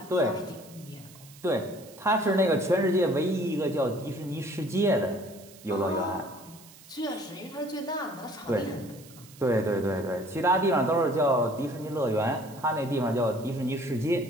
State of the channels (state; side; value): noise; right; hiss, 21 dB below the sound